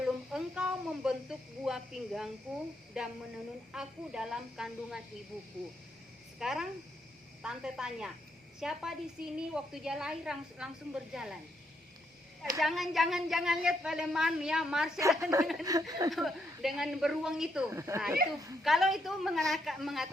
engkau membentuk buah pinggangku dan menenun aku dalam kandungan ibuku. Sekarang tante tanya, siapa di sini waktu dia lahir langsung berjalan? Jangan lihat Paleman ya, Marsha dengan beruang itu. Nah, itu kalau itu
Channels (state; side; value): normal; both; correlation 0.77